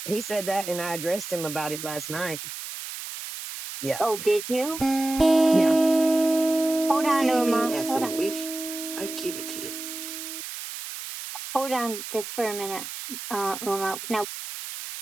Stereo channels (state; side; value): noise; right; hiss, 9 dB below the sound